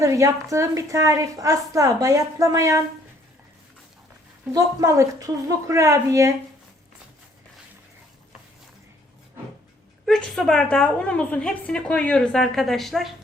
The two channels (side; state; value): both; normal; correlation 0.63